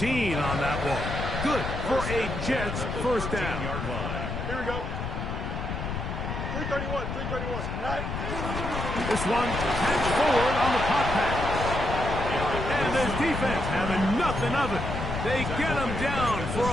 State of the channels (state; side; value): noise; left; rumble, 4 dB below the sound